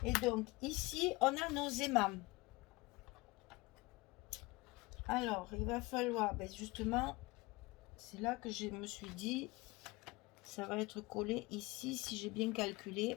Et donc ici on a nos aimants. Alors il va falloir, ben justement, c'est là que je me suis dit, ça va être collé ici si j'ai bien calculé.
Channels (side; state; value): right; quieter; 23.1 dB